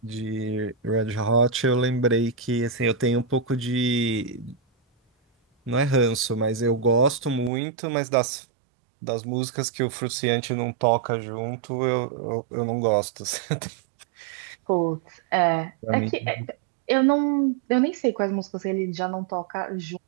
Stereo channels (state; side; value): drops out; left; at 7.5 s